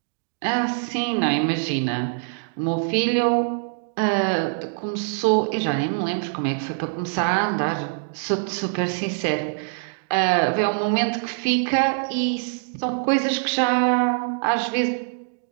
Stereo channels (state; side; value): silent; left; digital silence